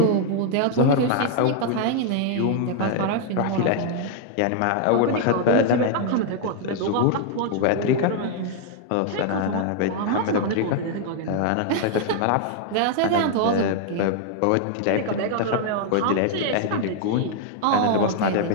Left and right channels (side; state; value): both; different; correlation 0.00